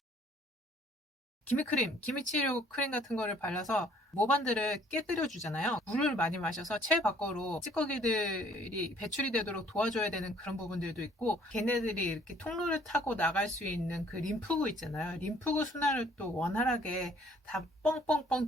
기미크림, 기미치료 크림 같은 거를 발라서 모반들을 깨뜨려 주잖아요. 물을 많이 마셔서 체외 밖으로 찌꺼기들이 배출이 되도록 도와줘야 되는 그런 부분들도 있고, 걔네들이 이렇게 통로를 타고 나갈 수 있는 그 림프구 있잖아요. 림프구 순환을 또 원활하게 다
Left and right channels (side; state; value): both; normal; correlation 0.59